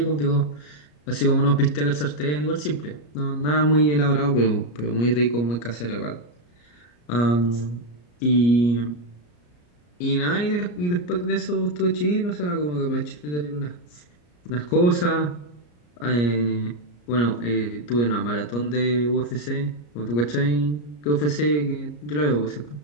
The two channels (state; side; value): late; right; 34 ms